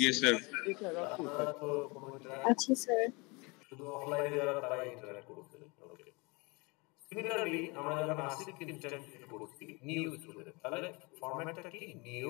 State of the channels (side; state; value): right; quieter; 27.8 dB